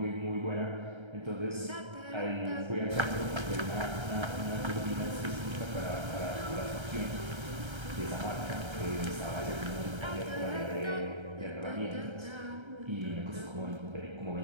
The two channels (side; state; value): left; late; 1.3 ms